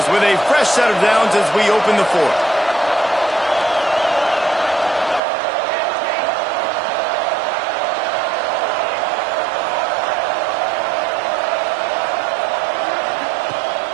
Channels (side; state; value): left; drops out; at 5.2 s